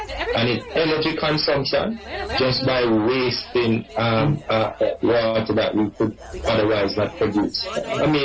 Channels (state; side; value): identical; both; correlation 1.00